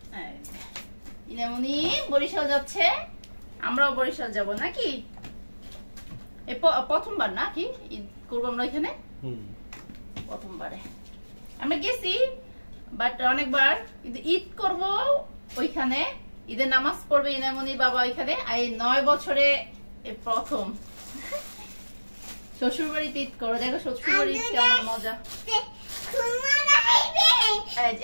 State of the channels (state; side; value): inverted; both; correlation -1.00